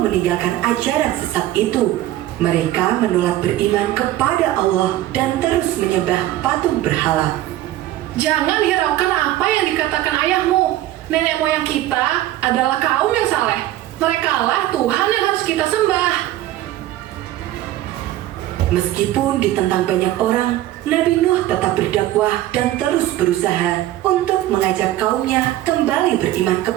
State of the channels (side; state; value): left; quieter; 14.4 dB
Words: ajaran sesat itu. Mereka menolak beriman kepada Allah dan terus menyembah patung berhala. Jangan hiraukan apa yang dikatakan ayahmu. Nenek moyang kita adalah kaum yang saleh. Merekalah Tuhan yang harus kita sembah. Meskipun ditentang banyak orang, Nabi Nuh tetap berdakwah dan terus berusaha untuk mengajak kaumnya kembali beriman